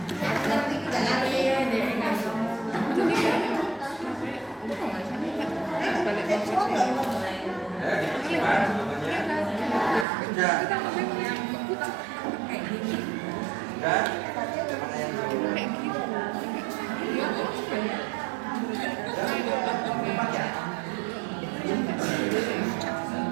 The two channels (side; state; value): left; drops out; at 10.1 s